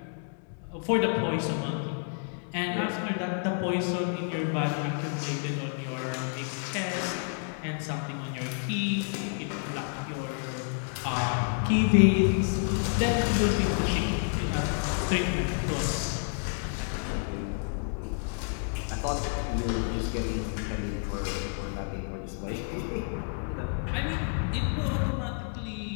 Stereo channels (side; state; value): right; silent; 58 dB below the other